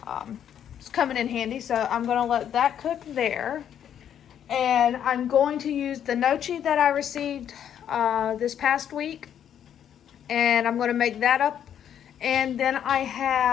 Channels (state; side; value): quieter; right; 9.5 dB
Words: It's coming in handy, so I'm gonna let that cook there. And I'm going to use the gnocchi that I received this past week, and I'm gonna make that up. And then I